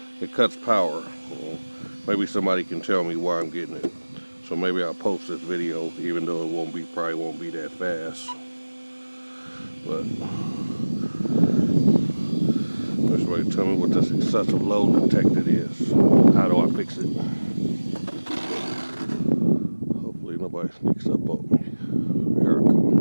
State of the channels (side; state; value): both; inverted; correlation -1.00